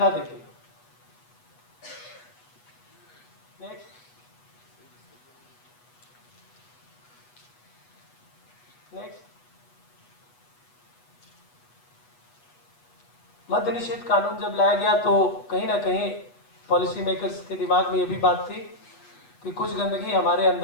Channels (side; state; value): right; late; 8.2 ms